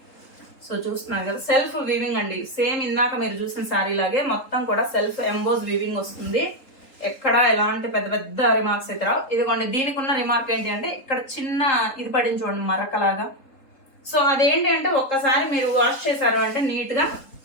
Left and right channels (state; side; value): late; right; 3.8 ms